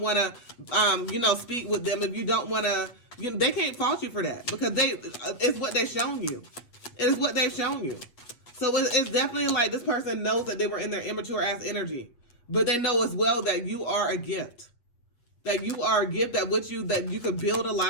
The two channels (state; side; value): late; right; 8.3 ms